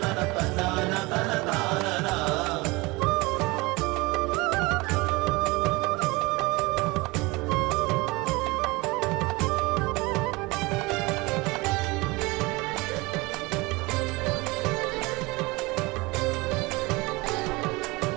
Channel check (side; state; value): left; quieter; 23.9 dB